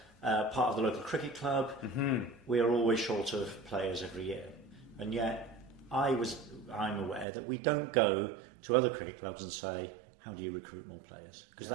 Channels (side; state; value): left; drops out; at 7.2 s